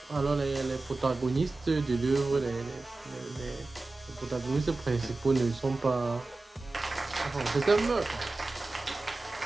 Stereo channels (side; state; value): left; quieter; 3.3 dB